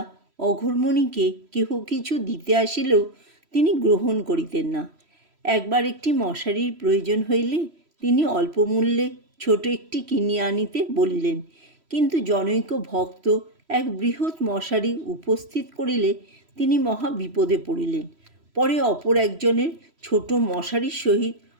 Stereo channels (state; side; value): late; left; 3.1 ms